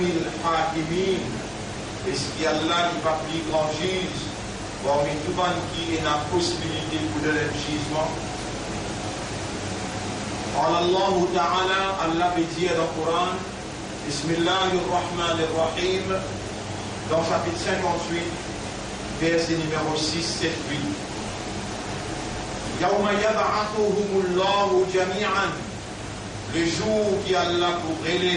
hakimin. Est-ce qu'Allah n'est pas plus grand juge parmi tout le monde qui a la possibilité pour donner le jugement? Allah Ta'ala, Allah veut dire dans le Coran, Bismillahirrahmanirrahim, dans chapitre 58, verset numéro 6, 7, 8. Yawma yab'athuhumullahu jami'an. Le jour qui Allah pour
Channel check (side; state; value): both; identical; correlation 1.00